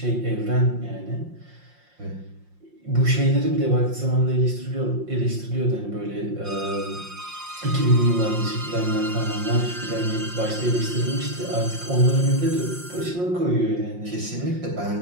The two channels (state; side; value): late; left; 5.6 ms